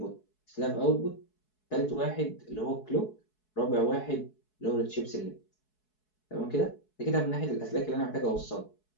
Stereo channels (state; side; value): late; right; 4.7 ms